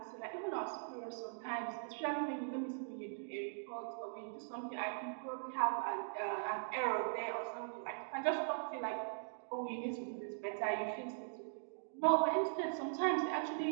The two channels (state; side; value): silent; left; digital silence